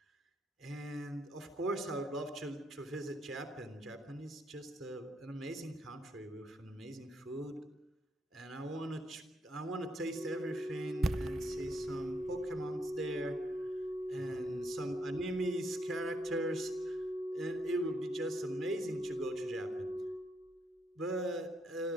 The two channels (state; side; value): normal; both; correlation 0.76